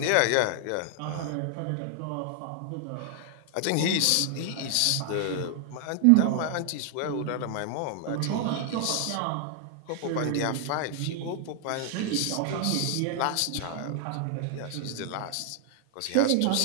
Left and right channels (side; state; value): both; different; correlation 0.00